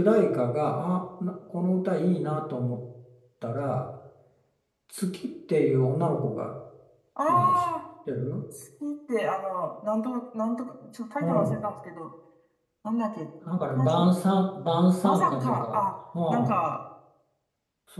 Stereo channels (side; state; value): both; identical; correlation 1.00